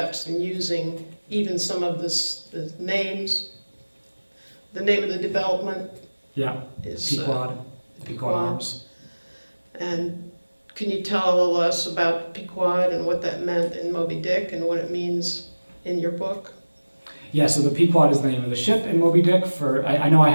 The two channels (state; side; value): inverted; both; correlation -1.00